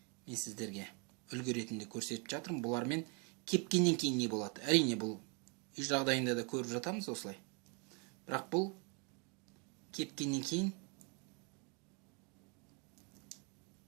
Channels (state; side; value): quieter; left; 34.1 dB